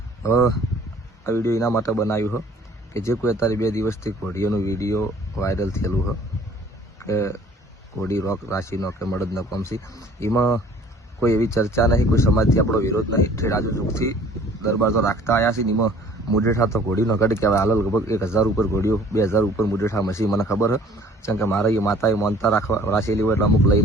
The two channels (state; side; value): normal; both; correlation 0.53